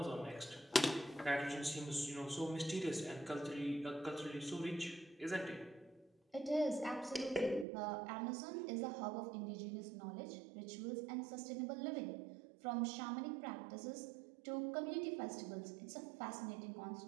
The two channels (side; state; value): left; drops out; at 7.7 s